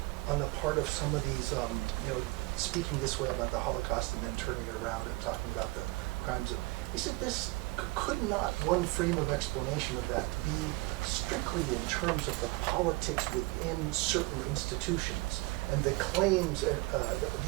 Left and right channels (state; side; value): quieter; left; 24.1 dB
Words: on the part of some of these, speaking this way about the Holocaust and then turning it around and talking about the crimes of, could not one frame of explanation of that be strictly in terms of the politics within certain institutions and the claims,